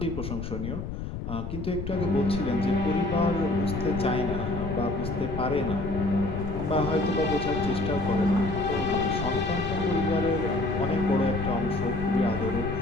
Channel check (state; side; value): noise; left; rumble, 6 dB below the sound